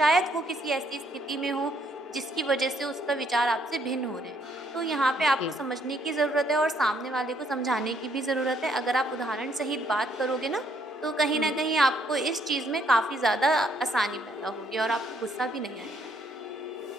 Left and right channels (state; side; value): normal; both; correlation 0.69